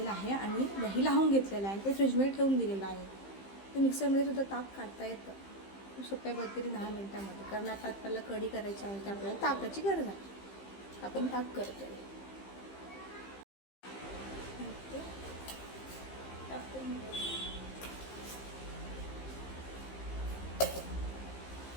आहे आणि दही लावून घेतलेलं आहे, ते फ्रीजमध्ये ठेवून दिलेलं आहे. ते मिक्सरमध्ये सुद्धा ताक काढता येतं खूप सोप्या पद्धतीने 10 मिनिटांमध्ये. कारण आता आपल्याला कढी करायची आहे, तर आपल्याला ताकाची गरज आहे. आपण ताक करतो आहे.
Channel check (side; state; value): right; late; 15 ms